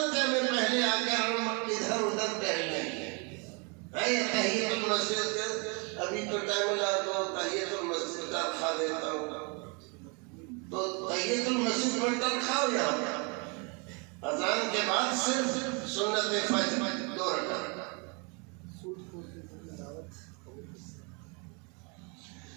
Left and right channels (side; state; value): left; quieter; 33.1 dB